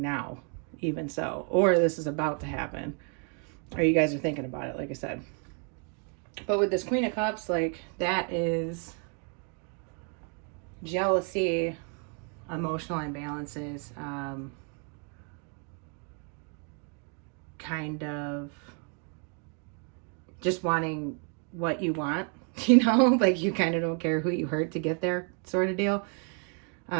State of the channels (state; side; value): quieter; left; 39.9 dB